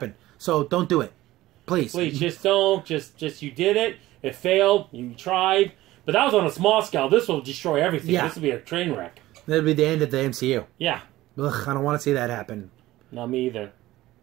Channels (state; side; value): quieter; left; 16.6 dB